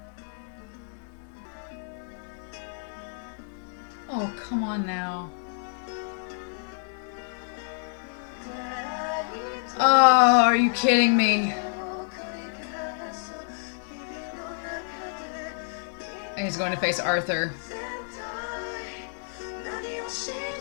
Oh, come on now. Oh, are you kidding me? And he's going to face Arthur.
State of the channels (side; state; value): right; silent; digital silence